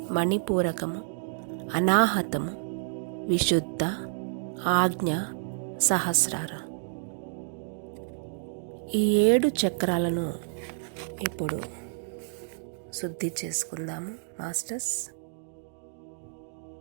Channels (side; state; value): left; silent; digital silence